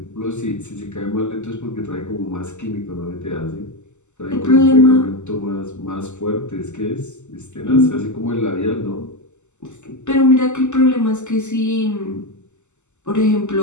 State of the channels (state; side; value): late; right; 0.83 ms